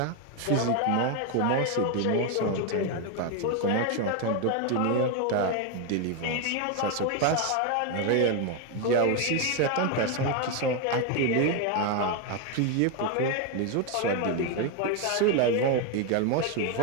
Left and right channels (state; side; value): different; both; correlation 0.02